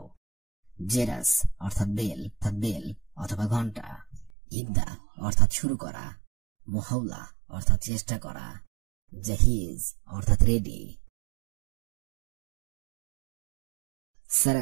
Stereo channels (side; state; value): left; drops out; at 4.3 s